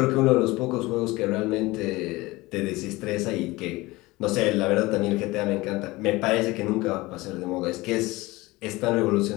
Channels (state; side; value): quieter; right; 21.0 dB